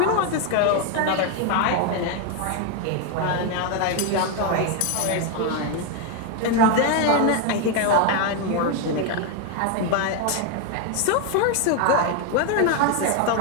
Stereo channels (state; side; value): different; both; correlation 0.01